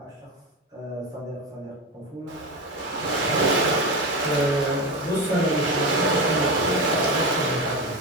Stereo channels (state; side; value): normal; both; correlation 0.19